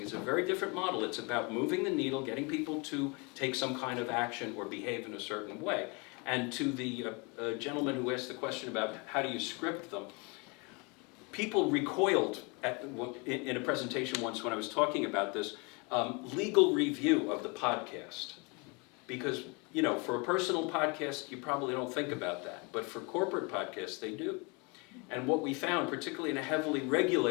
it's a very different model. It's about moving the needle, getting people to take some kind of action or behave in a certain way. And to the gentleman who asked the question about how do you script them, people recoiled in a presentation once when I was talking about this, legal review of the podcast. Because, for a personal podcast, you probably don't think about that. But for corporate podcasts, they do. And what we found, particularly in a heavily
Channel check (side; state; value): right; quieter; 30.0 dB